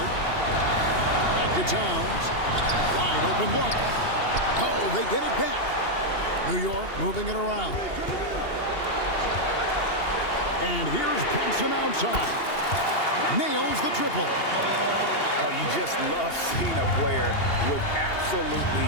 Back to Towns. Wide open look. Oh, they get it back. New York moving it around. And here's Brunson outside. Nails the triple. Oh, you just love seeing a player with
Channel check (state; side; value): late; right; 2.8 ms